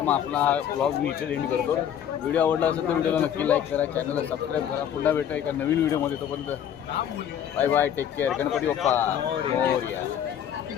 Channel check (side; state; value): right; quieter; 9.6 dB